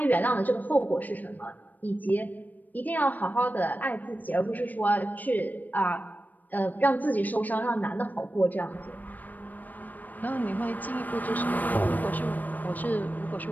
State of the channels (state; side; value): late; right; 0.084 ms